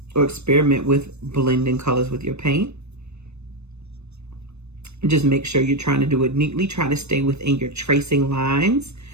or experiment with blending colors with your paint. Just make sure you're trying to do it neatly. Try to stay within your tracing lines.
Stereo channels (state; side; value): late; left; 0.81 ms